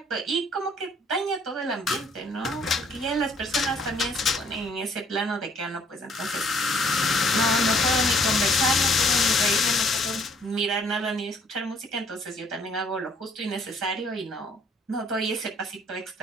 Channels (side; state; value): both; normal; correlation 0.62